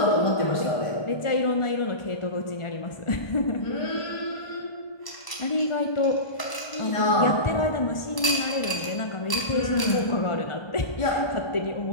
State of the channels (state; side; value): late; right; 1.0 ms